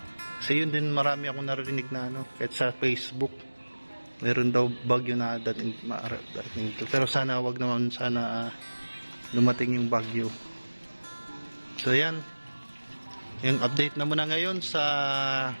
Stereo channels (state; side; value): inverted; both; correlation -1.00